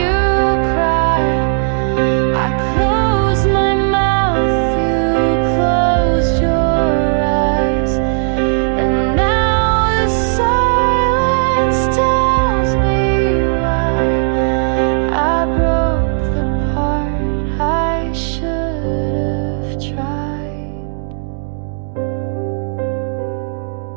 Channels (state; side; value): silent; left; digital silence